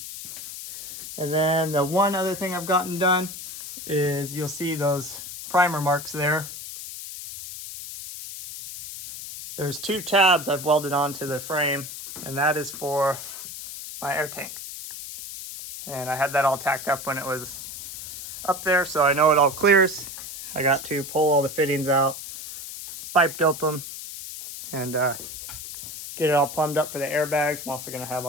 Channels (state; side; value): noise; left; hiss, 10 dB below the sound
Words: And then the one other thing I've gotten done is you'll see those primer marks there. There's 2 tabs I've welded onto the frame, and that is for my air tank. And I had that all tacked up when it was up there, so I know it all clears. I got to pull all the fittings out, pipe dope them, and get it all plumbed up for the airbags. I'm also going to have